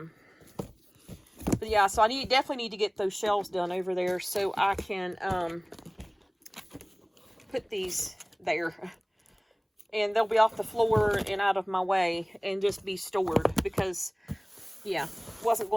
yeah, so I definitely need to get those shelves done over there so I can put these there, and they'll be off the floor and out of my way and just be stored because, yeah, wasn't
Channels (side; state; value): both; identical; correlation 1.00